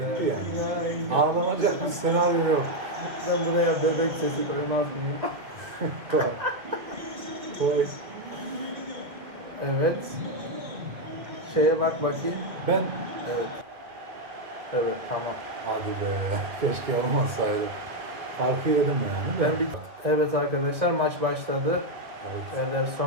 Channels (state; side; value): late; left; 2.3 ms